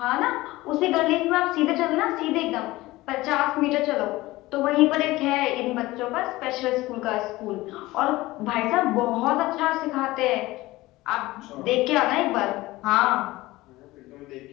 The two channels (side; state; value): right; quieter; 18.9 dB